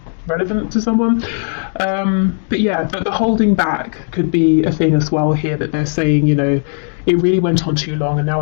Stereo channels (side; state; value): right; silent; digital silence